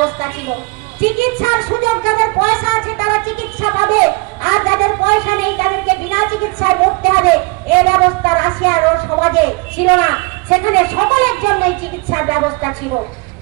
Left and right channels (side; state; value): left; quieter; 27.0 dB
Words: ছিল। চিকিৎসার সুযোগ যাদের পয়সা আছে তারা চিকিৎসা পাবে, আর যাদের পয়সা নেই তাদেরকে বিনা চিকিৎসায় মরতে হবে, এই ব্যবস্থা রাশিয়ার সমাজে ছিল না। সেখানে সকলের জন্যই চিকিৎসার ব্যবস্থা ছিল।